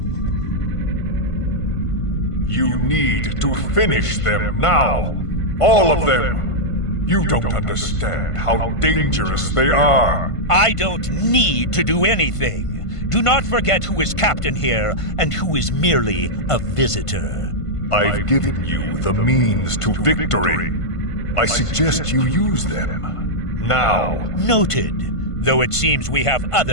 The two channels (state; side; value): late; right; 1.5 ms